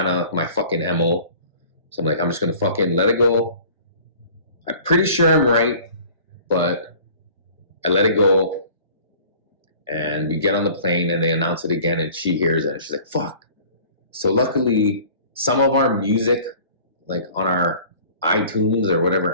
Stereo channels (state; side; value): inverted; both; correlation -0.48